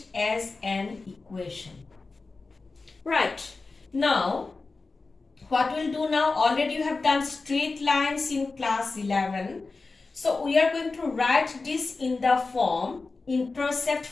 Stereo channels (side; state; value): right; quieter; 3.9 dB